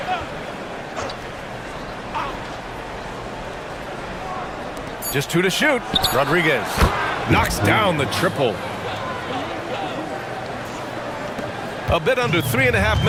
Just 2 to shoot. Rodriguez knocks down the triple. A bit under 3.5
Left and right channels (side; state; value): both; identical; correlation 1.00